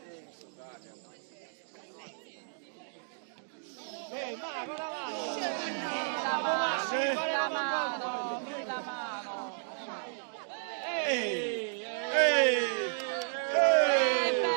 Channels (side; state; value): left; silent; digital silence